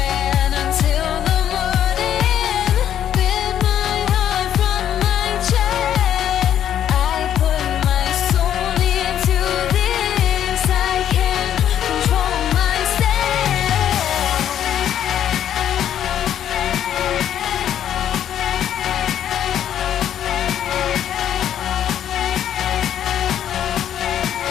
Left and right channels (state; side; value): quieter; right; 10.2 dB